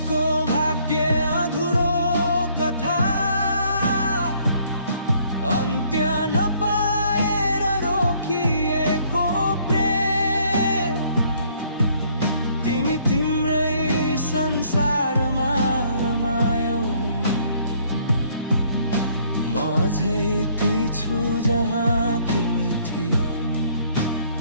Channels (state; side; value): inverted; both; correlation -0.63